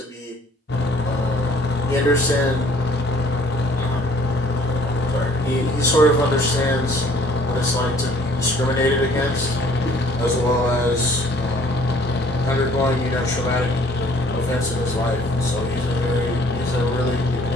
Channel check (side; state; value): both; normal; correlation 0.57